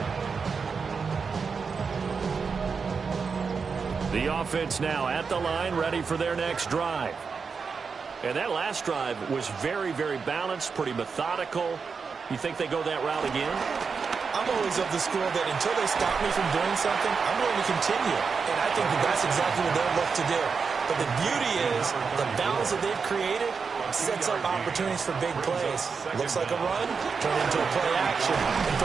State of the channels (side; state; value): left; quieter; 5.4 dB